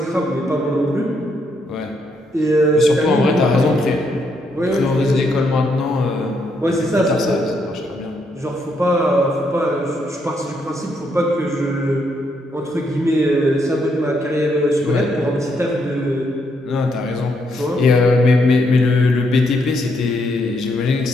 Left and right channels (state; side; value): normal; both; correlation 0.76